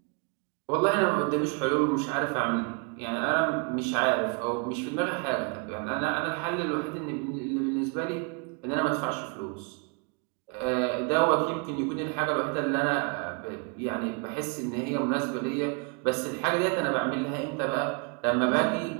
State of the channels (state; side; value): quieter; left; 34.9 dB